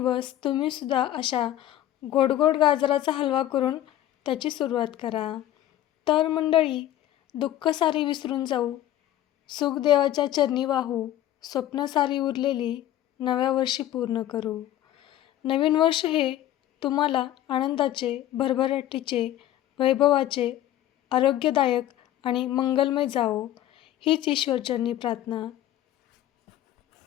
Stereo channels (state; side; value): quieter; right; 13.0 dB